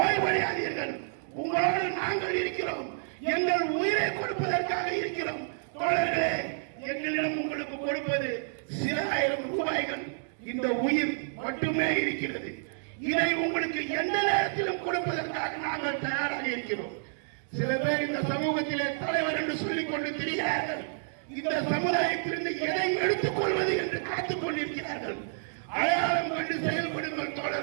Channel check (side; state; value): left; silent; digital silence